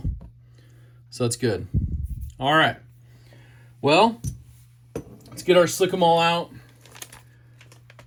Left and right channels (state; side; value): identical; both; correlation 1.00